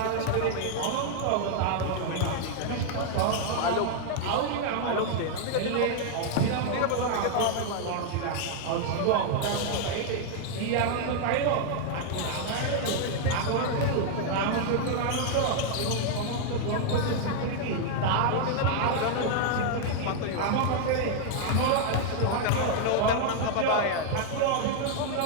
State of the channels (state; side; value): different; both; correlation 0.00